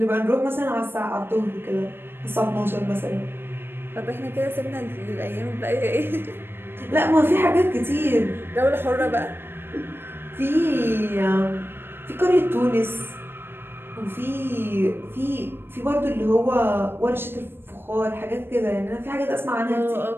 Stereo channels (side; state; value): left; late; 0.10 ms